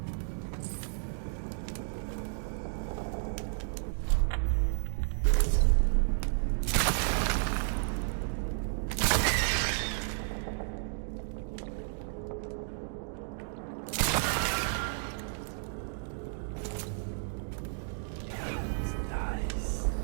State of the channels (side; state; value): left; silent; digital silence